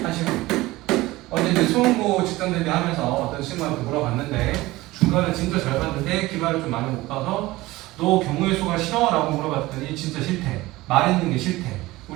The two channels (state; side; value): quieter; left; 19.0 dB